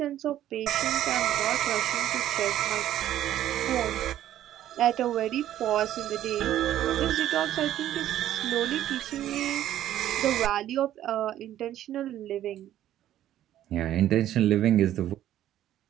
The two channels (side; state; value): left; quieter; 12.3 dB